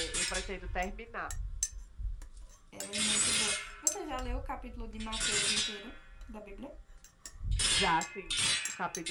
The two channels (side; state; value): both; identical; correlation 1.00